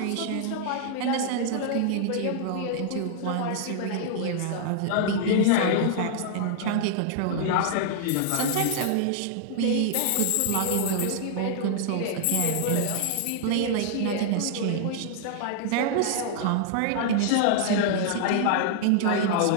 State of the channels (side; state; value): both; different; correlation 0.00